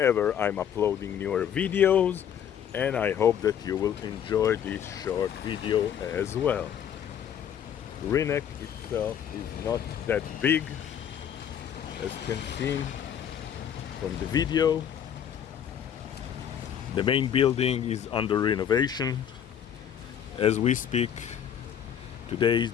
I'm uploading newer videos, and I hope that you will enjoy this short video as well. Rynek itself is not that big, as you can see from the video. The main building is under renovation as we speak. Today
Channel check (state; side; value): quieter; right; 9.0 dB